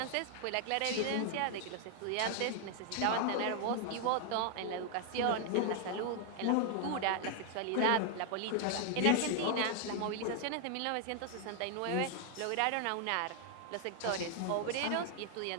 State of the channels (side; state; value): both; different; correlation 0.00